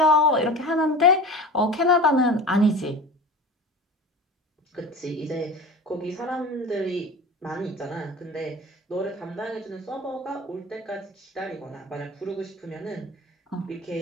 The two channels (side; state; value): both; normal; correlation 0.34